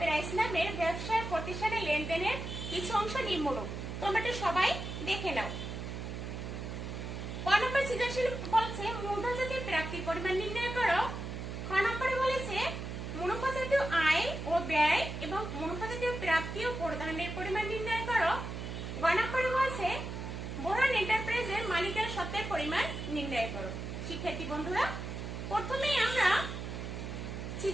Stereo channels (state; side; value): noise; right; hum, 6 dB below the sound